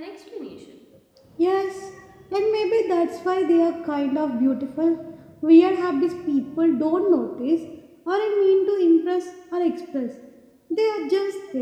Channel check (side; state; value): both; identical; correlation 1.00